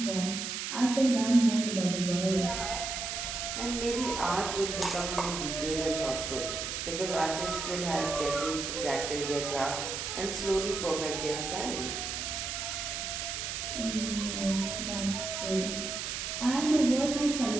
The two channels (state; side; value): noise; right; hiss, 4 dB below the sound